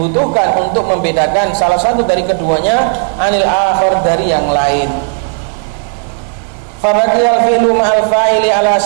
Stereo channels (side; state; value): left; silent; 62 dB below the other